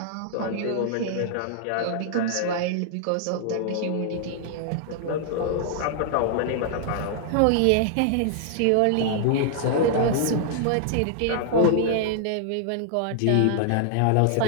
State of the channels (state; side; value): different; both; correlation -0.01